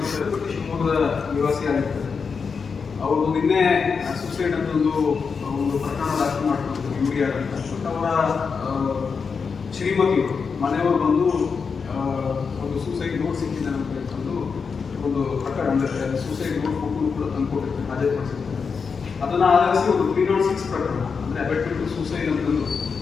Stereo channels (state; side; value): quieter; right; 5.5 dB